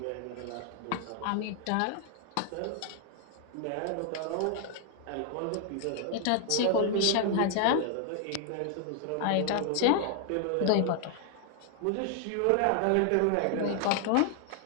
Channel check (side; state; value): both; different; correlation 0.00